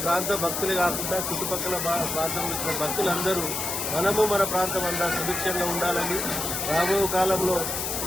ప్రాంత భక్తులే కాకుండా చుట్టుపక్కల ప్రాంతంలో వచ్చిన భక్తులందరూ మనము మన ప్రాంతం అంతా సుభిక్షంగా ఉండాలని, రాబోయే కాలంలో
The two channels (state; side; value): noise; left; hiss, 2 dB below the sound